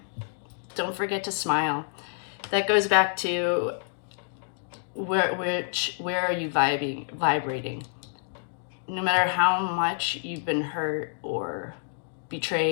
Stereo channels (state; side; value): silent; right; digital silence